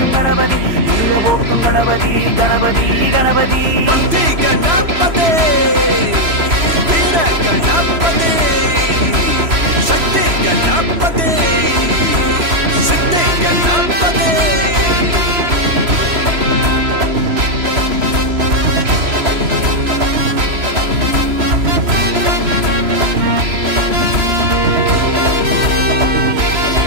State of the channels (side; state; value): left; late; 3.0 ms